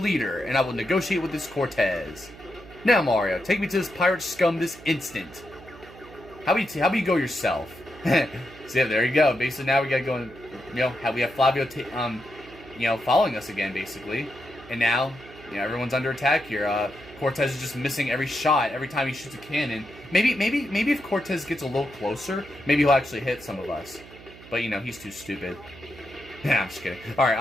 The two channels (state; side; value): noise; right; hum, 19 dB below the sound